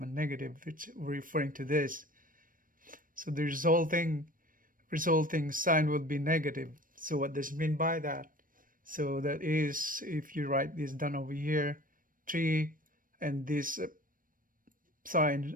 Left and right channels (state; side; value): late; left; 0.40 ms